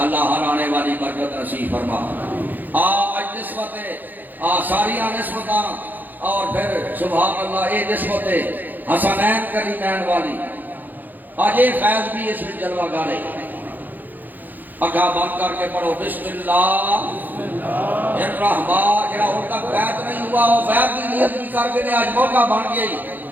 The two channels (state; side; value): late; left; 0.086 ms